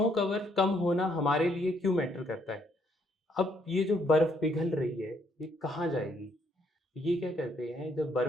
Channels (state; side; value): normal; both; correlation 0.70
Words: कवर कम होना हमारे लिए क्यों मैटर करता है? अब ये जो बर्फ पिघल रही है ये कहाँ जाएगी? ये क्या करते हैं, जब